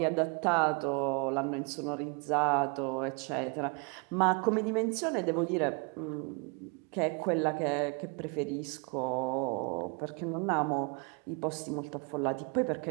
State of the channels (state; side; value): quieter; left; 34.0 dB